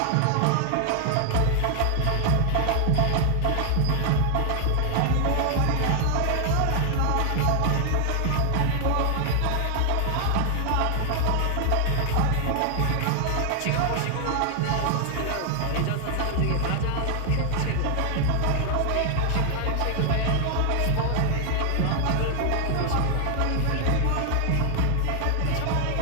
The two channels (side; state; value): both; different; correlation 0.00